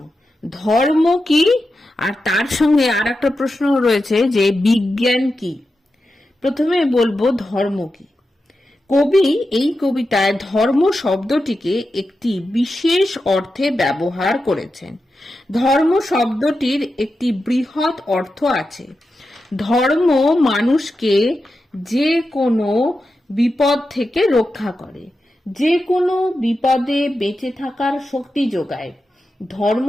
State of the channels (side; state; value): both; normal; correlation 0.90